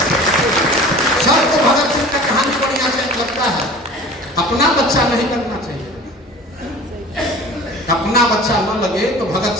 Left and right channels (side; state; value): both; normal; correlation 0.41